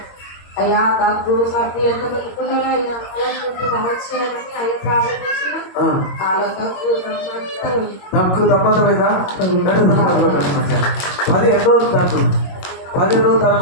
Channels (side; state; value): right; late; 22 ms